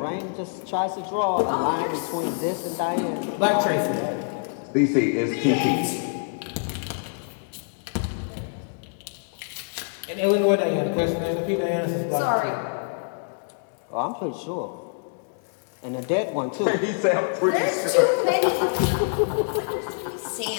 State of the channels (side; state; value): right; silent; digital silence